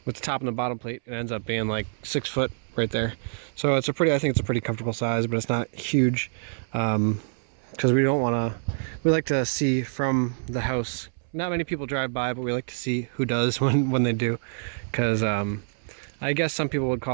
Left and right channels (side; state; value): left; silent; 61 dB below the other